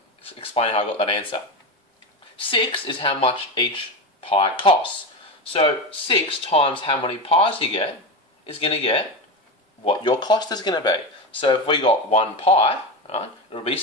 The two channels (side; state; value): both; normal; correlation 0.19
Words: explain how I got that answer. 6 is how much each pie costs. So 6 times how many pies you get is going to get what your cost is going to be. So if we got 1 pie, right, it'll be